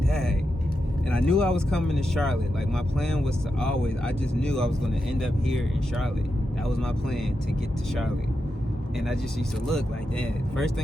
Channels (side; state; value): both; normal; correlation 0.87